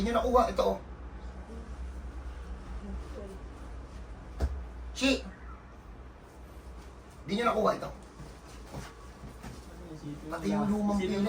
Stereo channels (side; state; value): both; identical; correlation 1.00